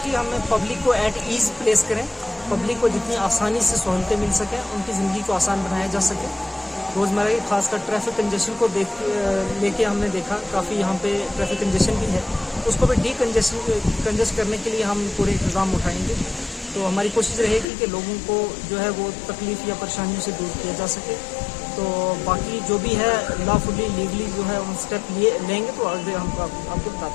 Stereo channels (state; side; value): drops out; right; at 17.7 s